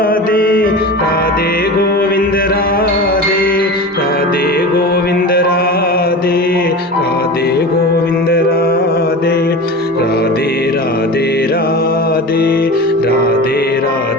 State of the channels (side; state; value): both; normal; correlation 0.30